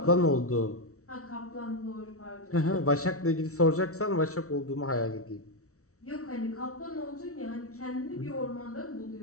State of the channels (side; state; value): right; late; 0.64 ms